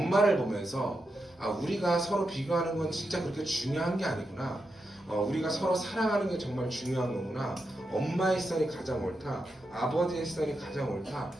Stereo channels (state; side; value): normal; both; correlation 0.87